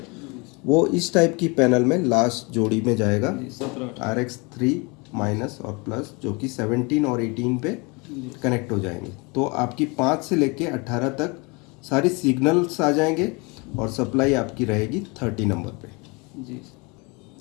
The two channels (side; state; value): right; quieter; 28.8 dB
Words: वो इस टाइप की पैनल में लास्ट जोड़ी में जाएगा RX 3 माइनस और प्लस, जो कि 17 और 18 पे कनेक्ट हो जाएंगे। तो आपकी 5 से लेके 18 तक सारी सिग्नल्स आ जाएंगे और सप्लाई आपकी रहेगी 30 नंबर पे जी।